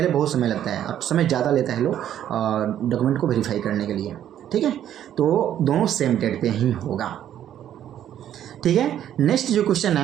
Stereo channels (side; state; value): left; quieter; 10.8 dB